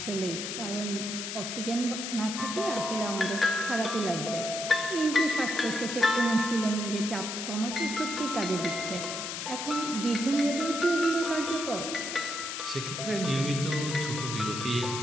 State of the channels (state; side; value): noise; left; hiss, 5 dB below the sound